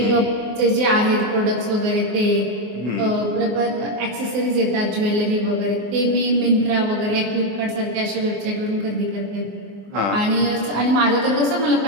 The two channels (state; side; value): late; left; 24 ms